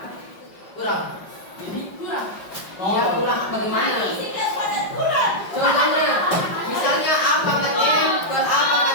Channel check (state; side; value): late; right; 5.4 ms